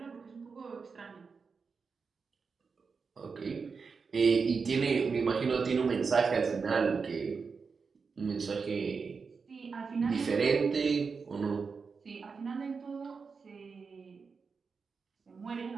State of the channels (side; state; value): left; quieter; 5.1 dB